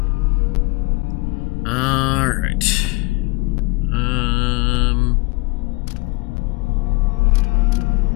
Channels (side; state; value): right; quieter; 26.5 dB